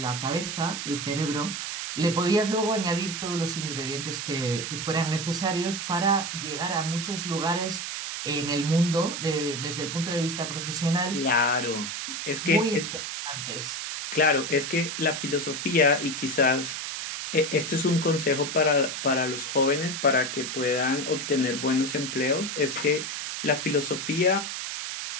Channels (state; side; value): noise; right; hiss, 5 dB below the sound